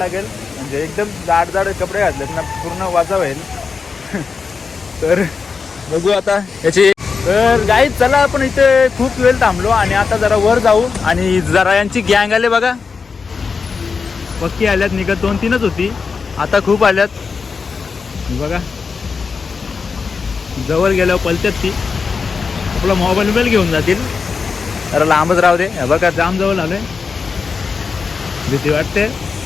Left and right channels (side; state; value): right; quieter; 5.1 dB